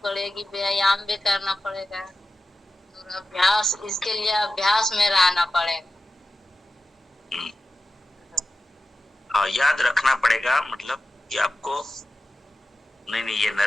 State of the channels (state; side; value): normal; both; correlation 0.93